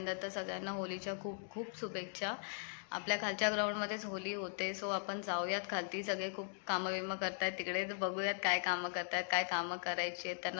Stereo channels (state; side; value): silent; right; 51 dB below the other